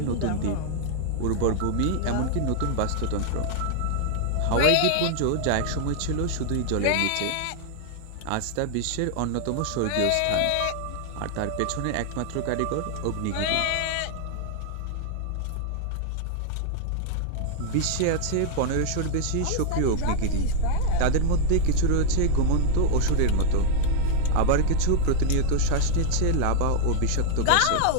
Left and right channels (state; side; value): different; both; correlation -0.01